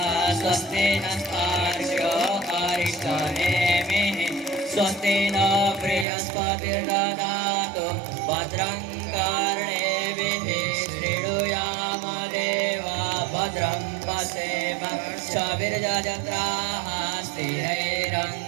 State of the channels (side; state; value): left; drops out; at 6.1 s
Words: स्वस्ति नस्तार्क्ष्यो अरिष्टनेमिः स्वस्ति न बृहस्पतिर्दधातु भद्रं कर्णेभिः शृणुयाम देवा भद्रं पश्येमाक्षभिर्यजत्राः